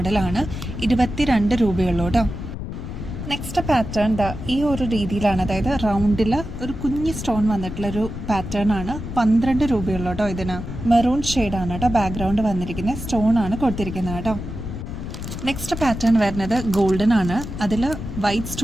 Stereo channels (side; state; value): left; noise; rumble, 8 dB below the sound